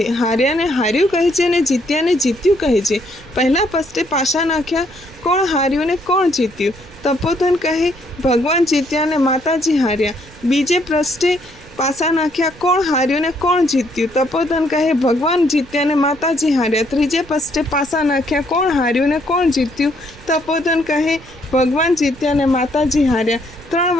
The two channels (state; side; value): noise; right; rumble, 22 dB below the sound